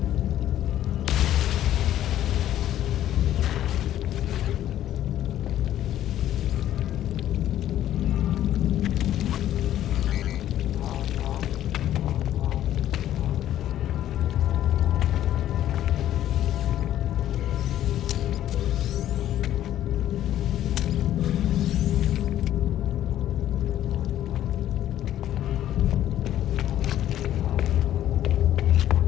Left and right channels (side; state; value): right; quieter; 12.2 dB